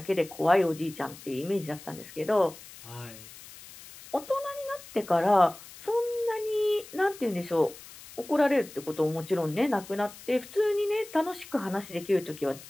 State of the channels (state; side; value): noise; left; hiss, 18 dB below the sound